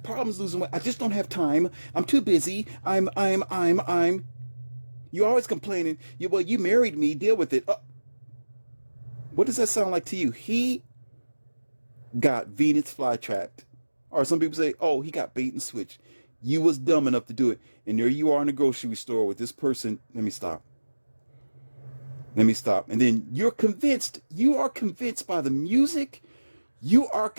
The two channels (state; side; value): inverted; both; correlation -1.00